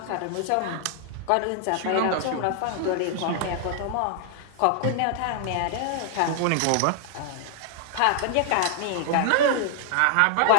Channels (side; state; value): both; different; correlation 0.00